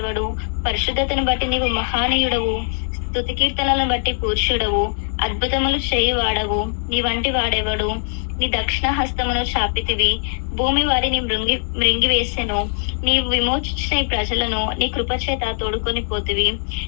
పరిశుద్ధతను బట్టి నీవు మహానీయుడవు. స్తుతి కీర్తనలను బట్టి పూజ్యుడవు. అద్భుతములు చేయువాడవు. నీ వంటి వాడెవడు? నీ దక్షిణ హస్తమును చాపితివి. భూమి వారిని మృంగివేసెను. నీవు విమోచించిన ఈ ప్రజలను నీ కృపచేత తోడుకొని పోతివి.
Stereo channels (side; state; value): right; silent; digital silence